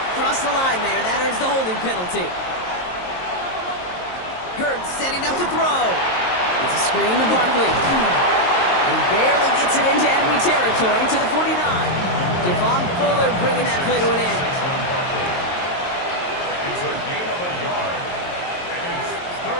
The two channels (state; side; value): late; right; 22 ms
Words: crossed the line there. That earns the holding penalty. Hurts setting up to throw. It's a screen to Barkley. He barely gets it into enemy territory to the 49. Javon Fuller bringing that play to an end. It's a gain of a yard, and it's